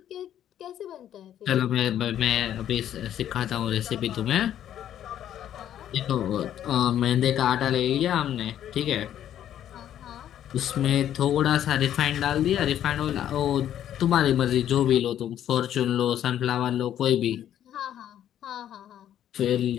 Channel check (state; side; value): quieter; right; 10.9 dB